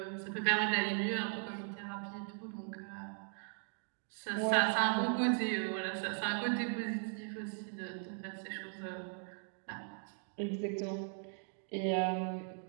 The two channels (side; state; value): left; silent; 52 dB below the other